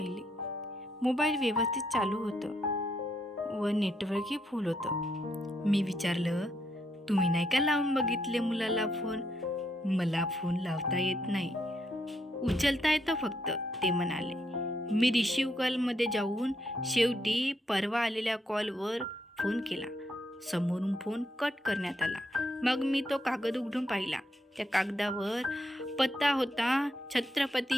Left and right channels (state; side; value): normal; both; correlation 0.77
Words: मोबाईल व्यवस्थित चालू होतं व नेटवर्कही फुल होतं. मी विचारलं, तुम्ही नाही का लावून बघितले मुलाला फोन? मला फोन लावता येत नाही, उचलता येतं फक्त, ते म्हणाले. मी रिसिव्ह कॉलमध्ये जाऊन शेवटी परवा आलेल्या कॉलवर फोन केला. समोरून फोन कट करण्यात आला. मग मी तो कागद उघडून पाहिला. त्या कागदावर पत्ता होता